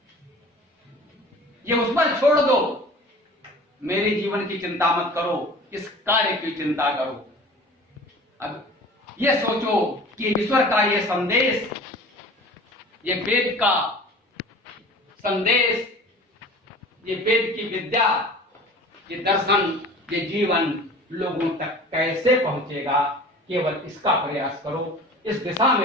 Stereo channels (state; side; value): normal; both; correlation 0.42